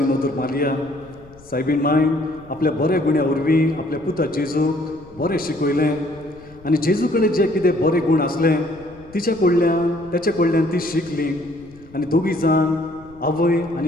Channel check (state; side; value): noise; left; rumble, 23 dB below the sound